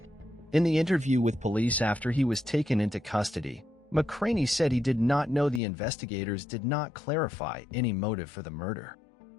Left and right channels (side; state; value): right; drops out; at 5.6 s